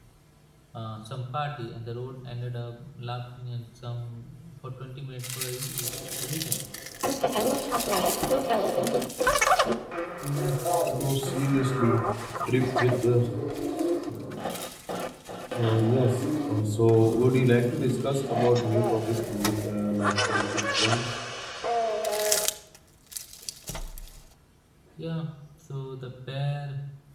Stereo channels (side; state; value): both; identical; correlation 1.00